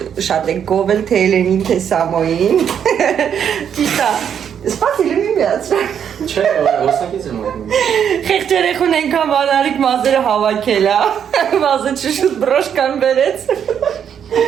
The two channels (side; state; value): left; quieter; 8.4 dB